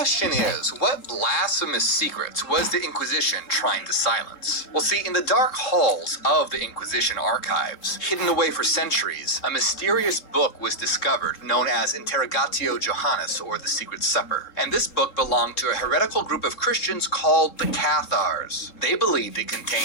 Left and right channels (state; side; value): late; right; 3.7 ms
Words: is, what blasphemous secrets was the Inquisition trying to silence? Well, see, in the dark halls of the Inquisition archives, hidden away for centuries, a mysterious book was discovered known as Interrogatio Johannes, or the Secret Supper. And this book belonged to a heretical group of Christians called the Cathars. They believed it